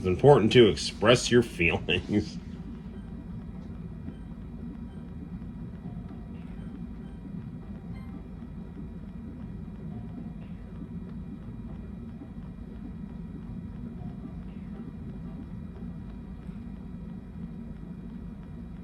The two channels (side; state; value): both; identical; correlation 1.00